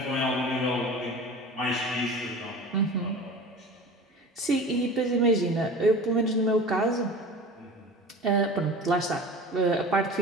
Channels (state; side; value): normal; both; correlation 0.36